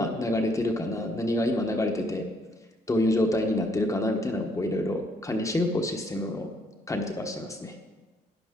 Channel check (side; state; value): both; normal; correlation 0.69